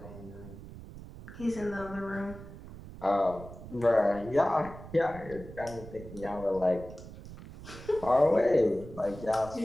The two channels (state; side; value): noise; right; rumble, 14 dB below the sound